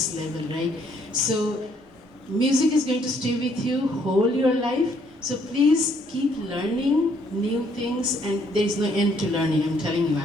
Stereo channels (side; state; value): both; normal; correlation 0.67